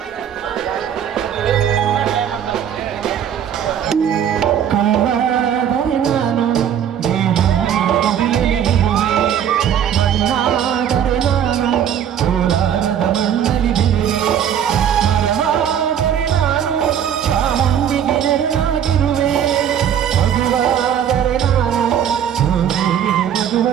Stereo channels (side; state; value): left; quieter; 9.2 dB